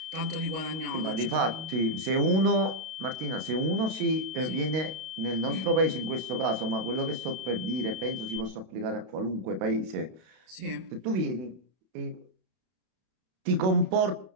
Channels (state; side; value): late; left; 32 ms